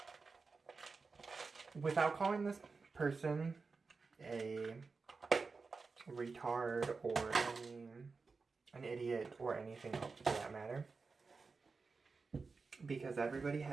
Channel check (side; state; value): left; quieter; 4.4 dB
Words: without calling this person a retard or an idiot or anything else for that matter, because everybody